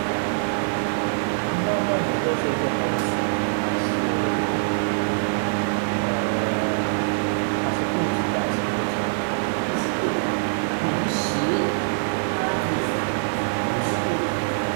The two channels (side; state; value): left; silent; digital silence